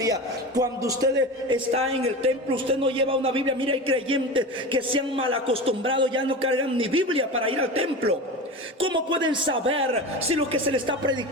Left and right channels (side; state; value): both; normal; correlation 0.28